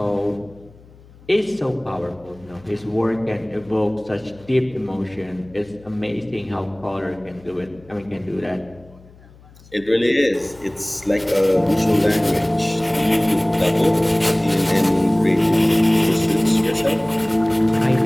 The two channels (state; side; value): noise; left; hum, 24 dB below the sound